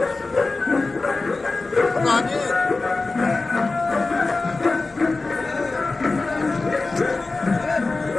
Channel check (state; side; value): quieter; right; 3.6 dB